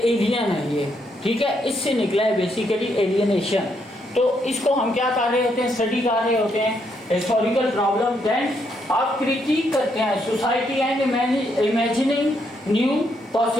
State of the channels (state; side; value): normal; both; correlation 0.76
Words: है ये, ठीक है। इससे निकला है बेसिकली एलियनेशन। तो इसको हम क्या कर रहे होते हैं, स्टडी कर रहे होते हैं हिस्टोरिकल प्रॉब्लम। देन आप क्रिटिक करते हैं society and imagining new